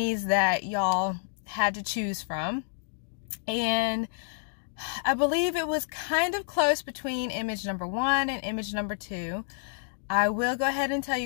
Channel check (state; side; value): silent; right; digital silence